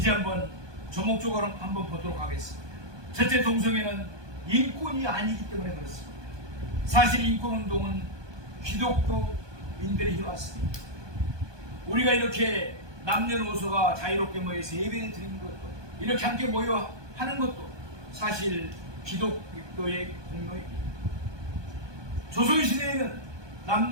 한번 조목조목 한번 보도록 하겠습니다. 첫째, 동성애는 인권이 아니기 때문에 그렇습니다. 사실 인권운동은 기독교인들이 해왔습니다. 우리가 이렇게 남녀노소가 자유롭게 모여서 예배를 드리는 것도 이렇게 함께 모여 하는 것도 사실 기독교의 공로입니다. 조선시대에는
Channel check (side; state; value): left; late; 1.2 ms